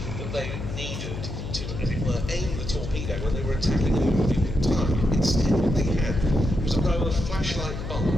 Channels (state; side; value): noise; left; hum, 7 dB below the sound